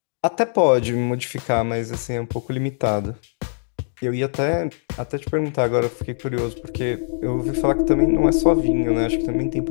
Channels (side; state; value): right; silent; digital silence